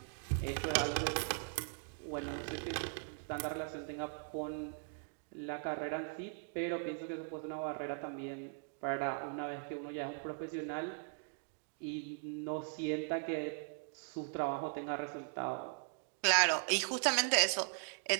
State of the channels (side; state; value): left; silent; 52 dB below the other